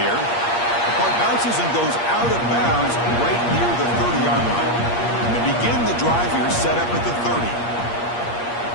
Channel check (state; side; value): late; right; 8.5 ms